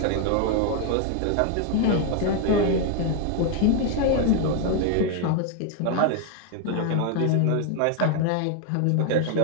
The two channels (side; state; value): both; different; correlation 0.00